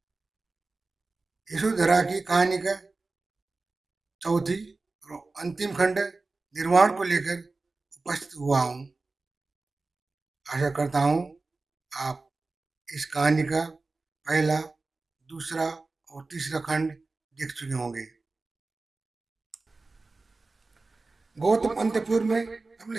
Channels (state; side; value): quieter; left; 3.6 dB